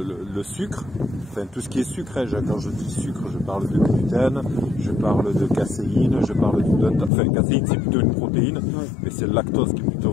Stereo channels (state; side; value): drops out; right; at 7.1 s